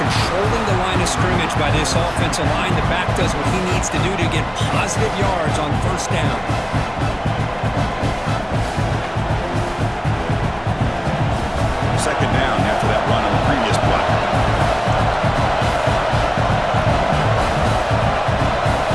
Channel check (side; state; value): both; identical; correlation 1.00